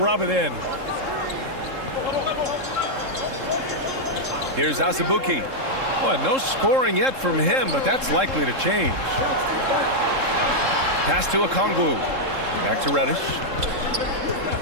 it in. Here's Azubuike. Boy, no scoring yet from him, but that's likely to change. Pass to Okongwu. Back to Reddish.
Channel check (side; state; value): left; late; 3.7 ms